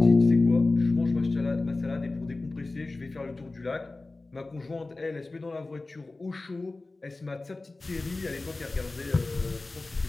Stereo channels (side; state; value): right; quieter; 3.2 dB